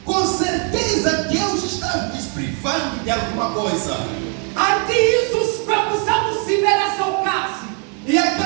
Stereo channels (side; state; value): left; quieter; 38.7 dB